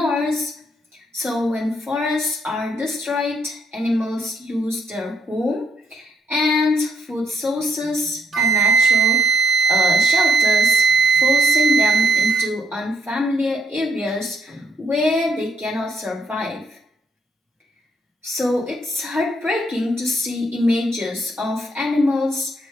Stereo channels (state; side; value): normal; both; correlation 0.71